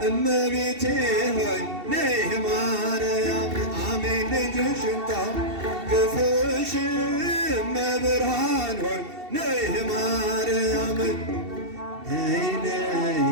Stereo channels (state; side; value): late; left; 2.7 ms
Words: እመቤቴ ሆይ ነይ ማርያም አሜን ልጅሽን ታቅፈሽ እመብርሃን ሆይ ነይ ማርያም ነይ ነይ